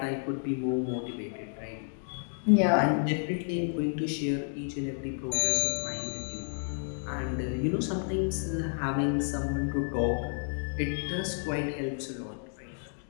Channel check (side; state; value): right; silent; digital silence